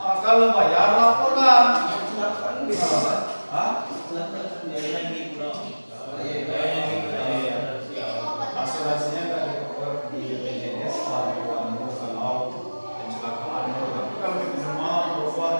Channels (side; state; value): both; inverted; correlation -1.00